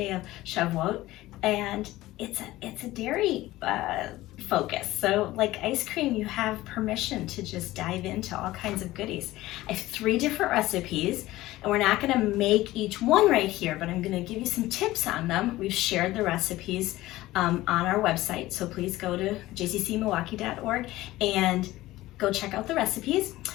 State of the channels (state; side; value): quieter; right; 17.1 dB